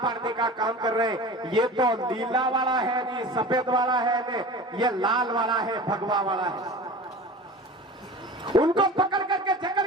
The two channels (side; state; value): both; normal; correlation 0.37